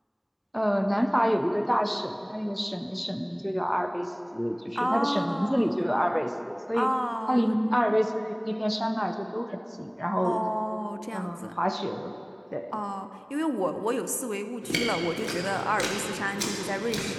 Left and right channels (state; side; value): identical; both; correlation 1.00